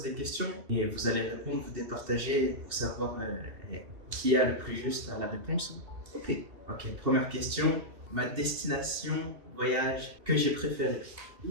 des questions et vous allez répondre, vous départager pour savoir qui a le plus juste à la réponse. Ok. Ok, première question. Ma destination voyage que j'ai préférée.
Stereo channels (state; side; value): late; left; 2.7 ms